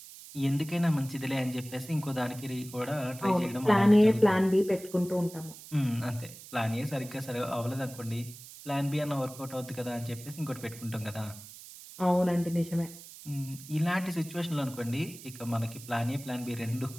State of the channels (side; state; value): right; noise; hiss, 16 dB below the sound